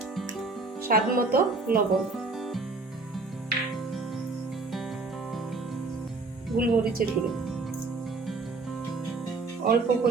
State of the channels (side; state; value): left; quieter; 3.7 dB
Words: স্বাদ মতো লবণ, গোলমরিচের গুঁড়ো, অল্প